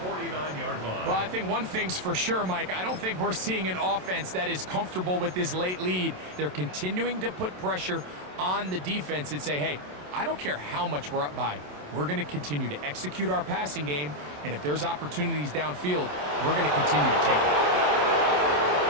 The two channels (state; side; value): late; left; 27 ms